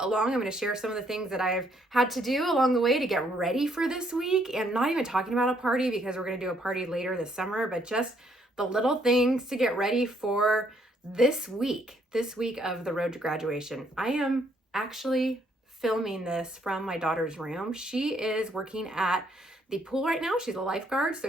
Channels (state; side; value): normal; both; correlation 0.70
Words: I'm going to share some of the things that I've had to do along the way to get ready for this week, and not even talking about a party because we're going to do a party later this summer, but just the little things to get ready for this week of the road to graduation. I am actually filming this from my daughter's room. She is working at the pool right now. She's a lifeguard,